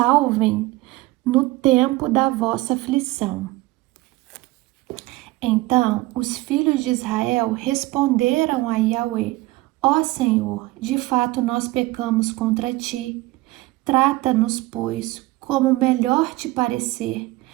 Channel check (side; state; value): left; quieter; 19.7 dB